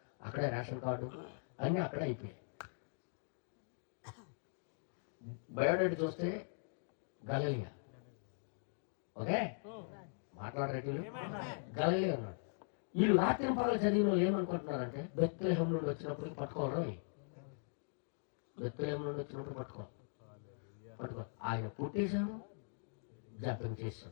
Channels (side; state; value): right; silent; digital silence